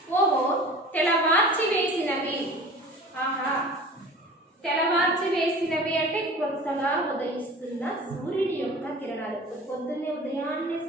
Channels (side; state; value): both; normal; correlation 0.41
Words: ఓహో తెలవార్చి వేసినవి. ఆహా కొత్తగా ఉదయిస్తున్న సూర్యుడి యొక్క కిరణాలు. పొద్దున్నే ఉదయాన్నే